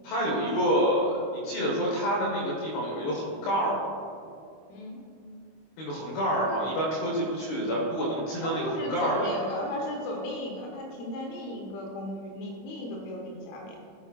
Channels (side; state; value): right; late; 25 ms